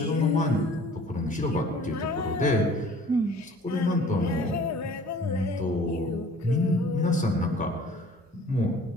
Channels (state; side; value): normal; both; correlation 0.50